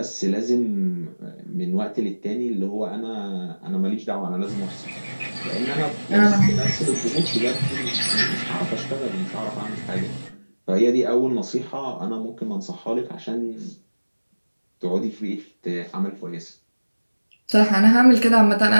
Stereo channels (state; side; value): inverted; both; correlation -1.00